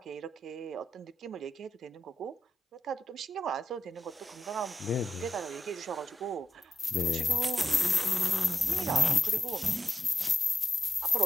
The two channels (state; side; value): normal; both; correlation 0.88